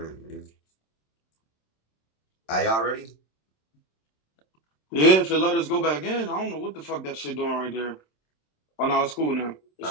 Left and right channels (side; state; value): right; late; 27 ms